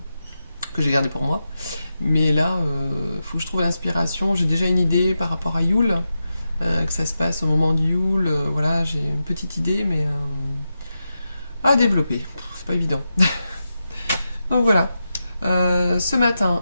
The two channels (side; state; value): both; inverted; correlation -0.89